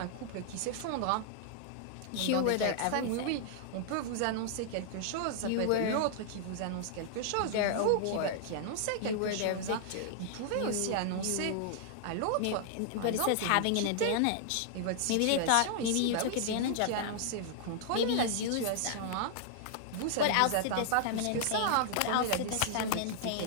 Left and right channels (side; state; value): both; different; correlation -0.01